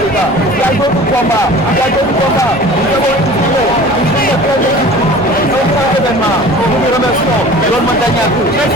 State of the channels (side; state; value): both; normal; correlation 0.42